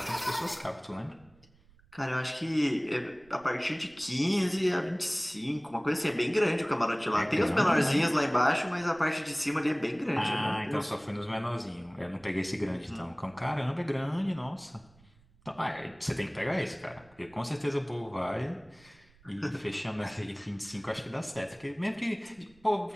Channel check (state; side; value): noise; right; rumble, 29 dB below the sound